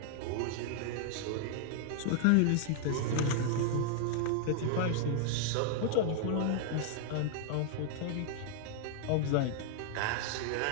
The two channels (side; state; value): both; different; correlation 0.00